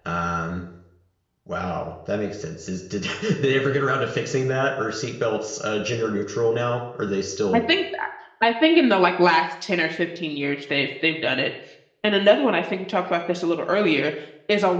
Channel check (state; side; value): identical; both; correlation 1.00